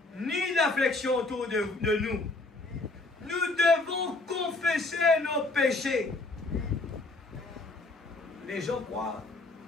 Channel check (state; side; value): quieter; right; 3.2 dB